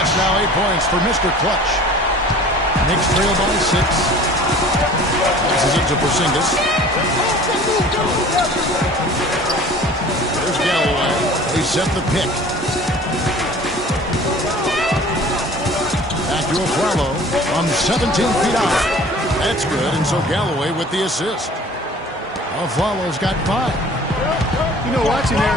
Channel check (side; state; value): both; normal; correlation 0.46